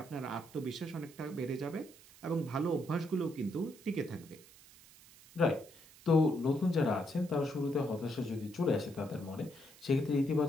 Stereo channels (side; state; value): right; noise; hiss, 22 dB below the sound